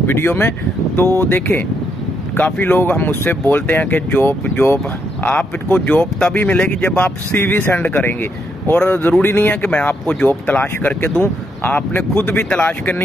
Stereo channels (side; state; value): both; normal; correlation 0.77